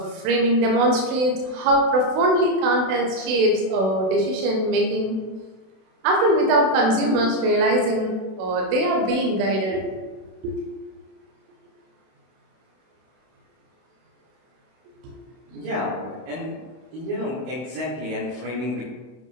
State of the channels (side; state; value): left; late; 32 ms